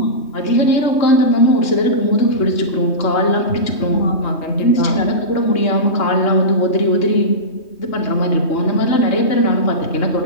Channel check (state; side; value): late; right; 3.2 ms